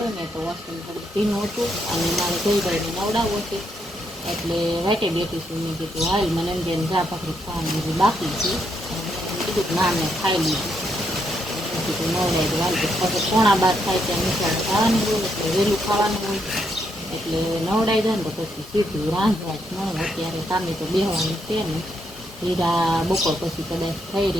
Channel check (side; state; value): both; normal; correlation 0.77